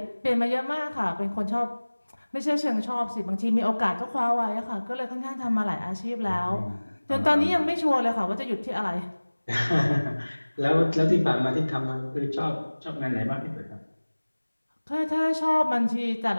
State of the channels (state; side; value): inverted; both; correlation -1.00